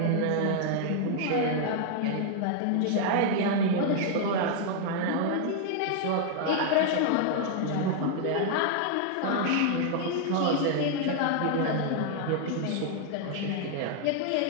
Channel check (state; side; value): different; both; correlation 0.00